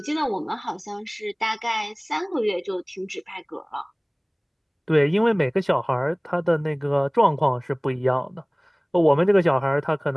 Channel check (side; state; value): both; identical; correlation 1.00